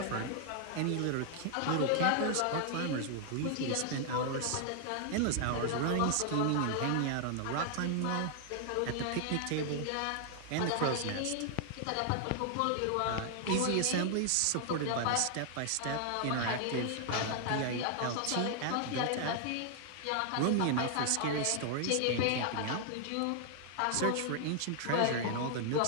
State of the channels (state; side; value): different; both; correlation 0.00